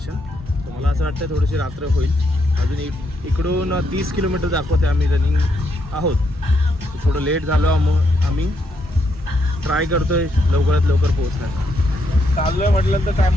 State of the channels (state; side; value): normal; both; correlation 0.77